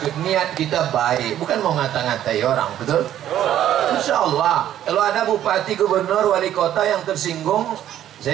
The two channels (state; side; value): quieter; left; 11.6 dB